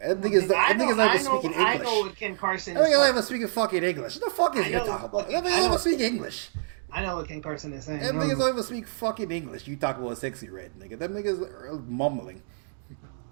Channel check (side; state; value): left; silent; digital silence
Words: Them niggas not even speaking English. I know what Ken Carson. Them niggas not even speaking fucking English. What the fuck is you talking about? Them niggas don't even speak English. I know what Ken Carson is saying. Them niggas don't even speak fucking English. You talk about Sexy Red, nigga. Them niggas are mumbling.